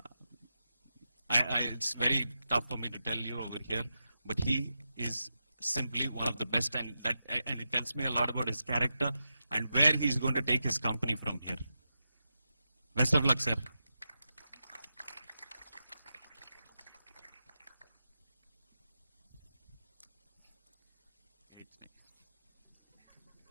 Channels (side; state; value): both; inverted; correlation -0.88